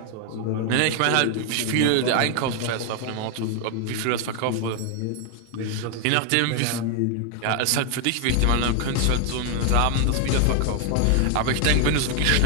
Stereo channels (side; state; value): both; different; correlation 0.00